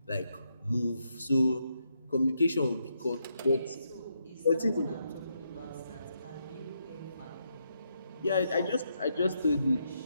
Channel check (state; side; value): inverted; both; correlation -0.80